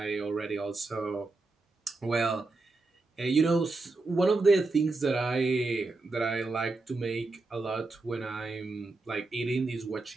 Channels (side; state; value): left; quieter; 3.4 dB